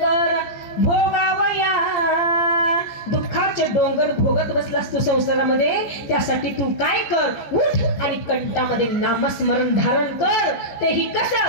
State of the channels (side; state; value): right; late; 15 ms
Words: भोगावया, दुःखाचे डोंगर भोगत बसलास तू संसारामध्ये. त्यासाठी तू काय कर, उठ आणि कंठामध्ये नामस्मरण धारण कर. तेही